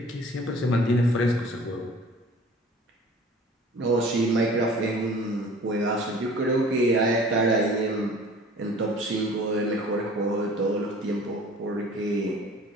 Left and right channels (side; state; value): both; normal; correlation 0.47